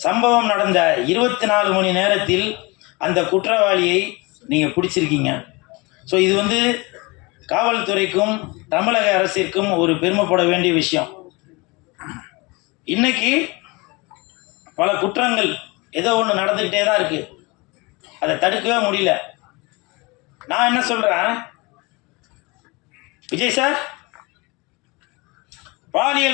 சம்பவம் நடந்த 24 மணி நேரத்தில் அந்த குற்றவாளியை நீங்கள் பிடிச்சிருக்கீங்க. ஸோ இது காவல்துறைக்கும் தமிழக அரசிற்கும் ஒரு பெருமைப்பட வேண்டிய விஷயம். இன்னைக்கு பல குற்றங்கள் ஏதோ ஒன்று நடந்துக்கிட்டே தான் இருக்குது, அதை தடுக்கவே முடியல. நான் என்ன சொல்கிறேன், விஜய் சார்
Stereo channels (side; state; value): right; quieter; 25.8 dB